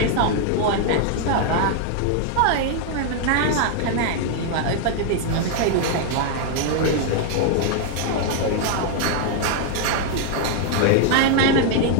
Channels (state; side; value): different; both; correlation 0.00